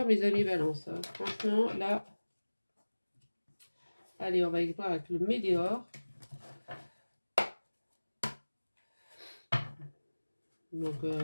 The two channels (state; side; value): inverted; both; correlation -1.00